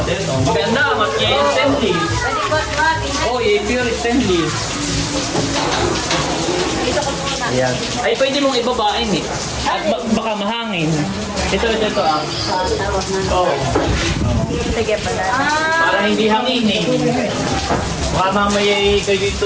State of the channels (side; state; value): both; identical; correlation 1.00